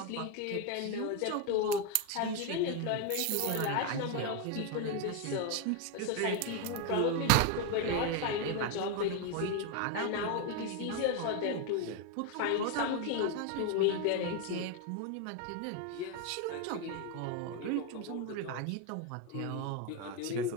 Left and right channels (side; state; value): both; different; correlation 0.02